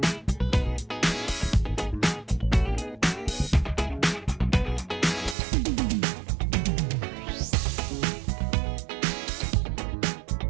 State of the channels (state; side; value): drops out; left; at 5.4 s